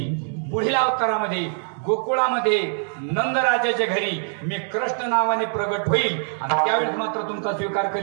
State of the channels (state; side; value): silent; left; digital silence